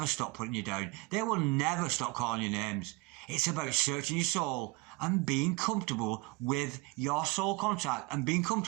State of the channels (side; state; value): left; quieter; 23.8 dB